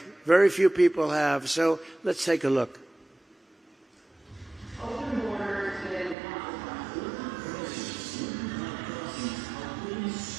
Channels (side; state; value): left; drops out; at 6.2 s